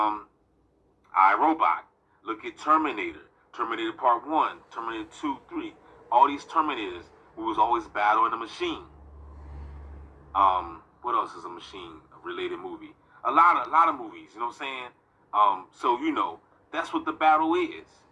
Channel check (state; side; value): identical; both; correlation 1.00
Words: Robot. Look at Terminator. Terminator Part 1, Terminator 2, 3. All these Terminators, we was always battling the machine. What else is a machine-related movie? A lot of movies, you know what I'm saying? So that's what the battle is.